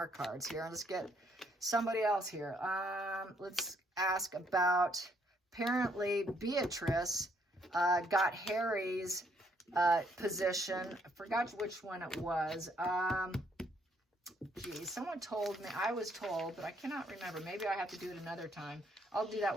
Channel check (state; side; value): normal; both; correlation 0.69